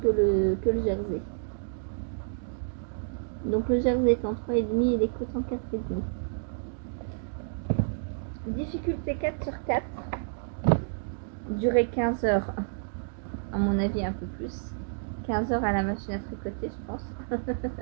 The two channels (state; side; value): silent; left; digital silence